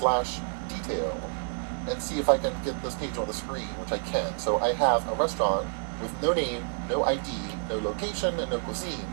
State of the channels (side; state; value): left; silent; 59 dB below the other